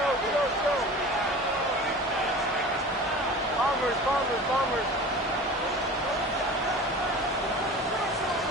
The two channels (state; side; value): normal; both; correlation 0.37